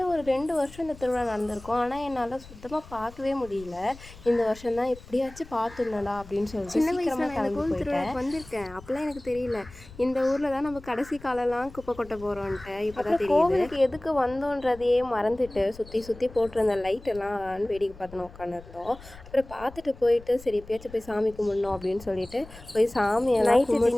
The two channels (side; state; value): left; noise; rumble, 19 dB below the sound